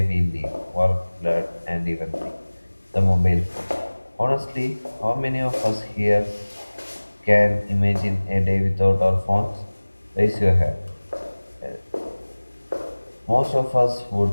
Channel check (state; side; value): inverted; both; correlation -1.00